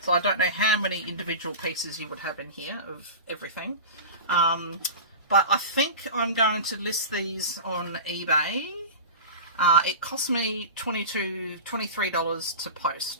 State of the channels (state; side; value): inverted; both; correlation -0.30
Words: So I don't know how many individual pieces you would have in here of everything. But I think I'm going to list these on eBay. It cost me $23 to